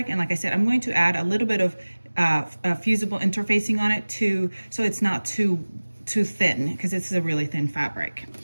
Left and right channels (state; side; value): inverted; both; correlation -1.00